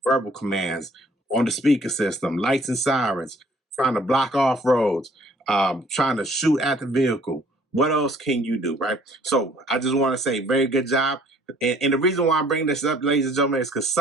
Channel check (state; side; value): normal; both; correlation 0.58